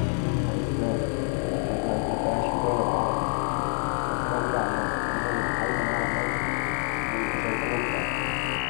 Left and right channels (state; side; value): silent; right; 60 dB below the other